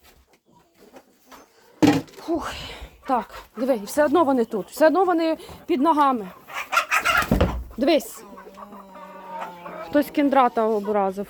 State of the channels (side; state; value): both; identical; correlation 1.00